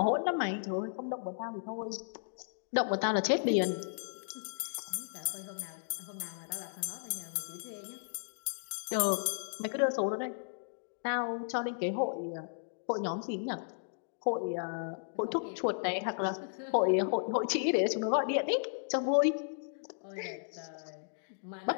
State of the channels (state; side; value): silent; right; digital silence